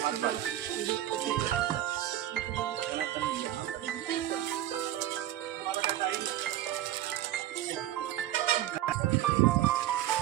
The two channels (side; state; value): left; quieter; 13.0 dB